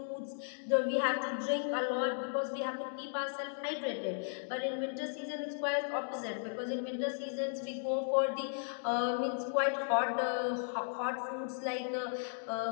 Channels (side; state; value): right; silent; digital silence